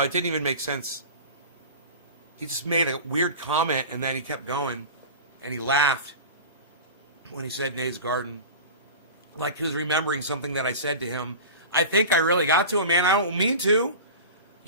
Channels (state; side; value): inverted; both; correlation -0.33